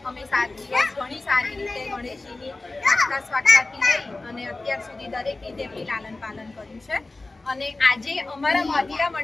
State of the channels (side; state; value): right; quieter; 3.2 dB